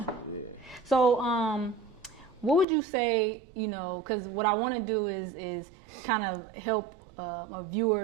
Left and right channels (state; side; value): drops out; left; at 2.7 s